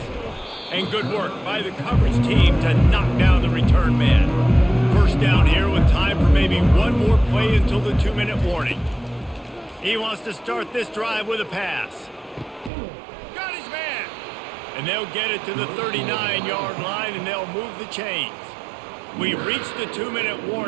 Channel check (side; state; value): left; drops out; at 12.7 s